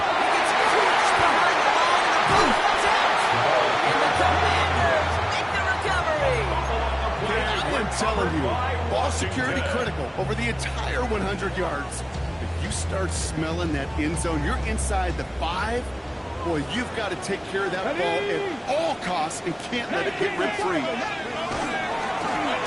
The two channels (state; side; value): identical; both; correlation 1.00